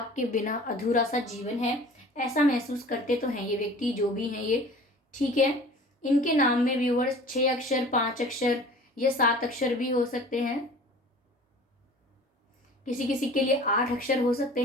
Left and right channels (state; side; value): normal; both; correlation 0.44